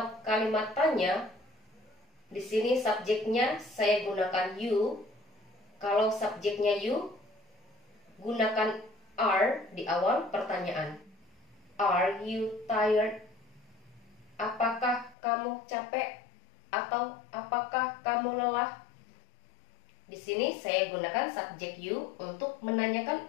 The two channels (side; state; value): right; drops out; at 15.2 s